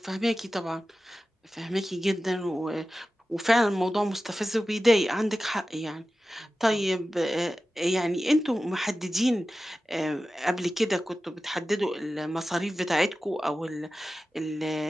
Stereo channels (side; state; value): both; normal; correlation 0.94